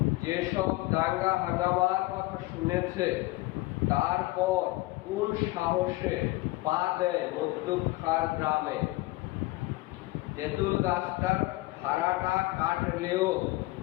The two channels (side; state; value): right; quieter; 20.4 dB